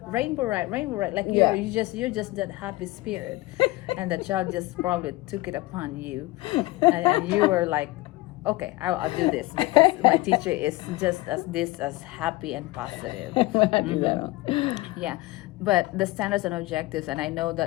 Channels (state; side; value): quieter; right; 19.7 dB